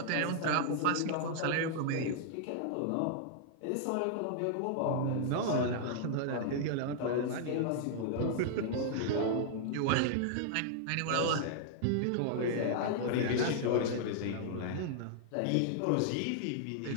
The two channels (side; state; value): both; different; correlation -0.01